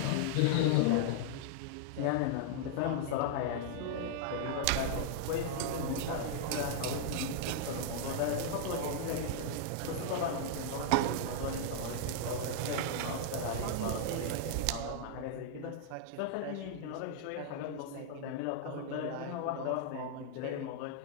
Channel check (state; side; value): different; both; correlation -0.01